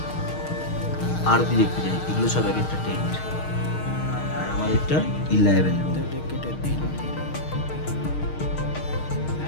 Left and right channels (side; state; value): right; late; 6.5 ms